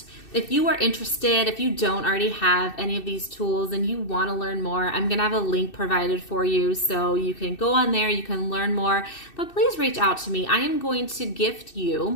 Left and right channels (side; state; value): right; late; 2.6 ms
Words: if you are interested, if you don't already have any of these tools and you want to learn more, I'm going to have a link provided for you. So you can go on there, you can learn more, but please reach out to me. I am going to gift